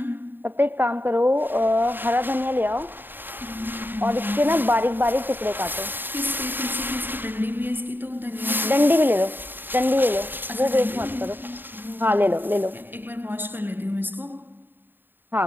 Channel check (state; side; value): late; left; 0.094 ms